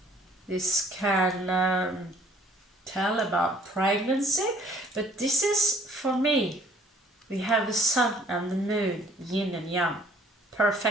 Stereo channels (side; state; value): both; normal; correlation 0.58